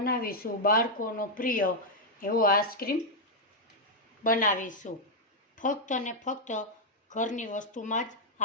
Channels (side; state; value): both; normal; correlation -0.03